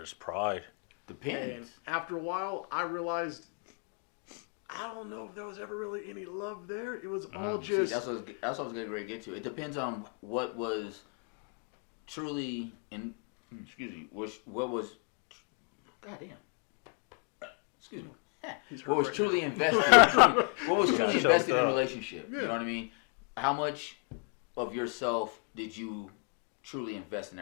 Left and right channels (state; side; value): quieter; right; 35.5 dB